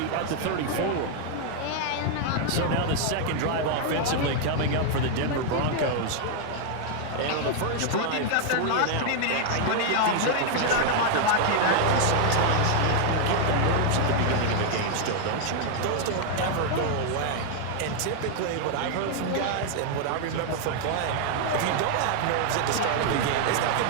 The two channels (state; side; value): different; both; correlation 0.00